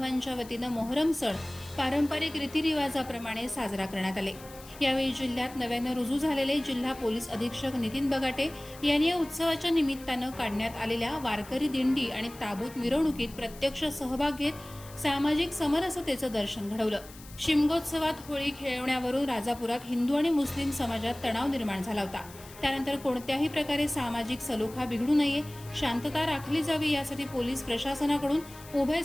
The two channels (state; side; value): noise; left; hiss, 19 dB below the sound